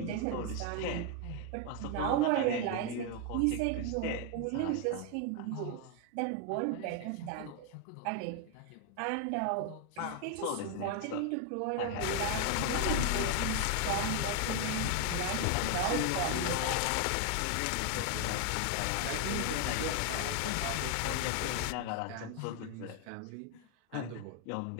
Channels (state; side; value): different; both; correlation 0.01